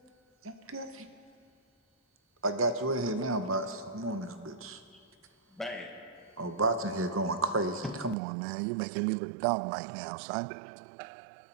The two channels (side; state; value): left; drops out; at 8.2 s